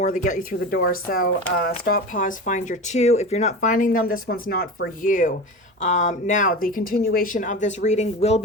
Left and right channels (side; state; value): both; normal; correlation 0.29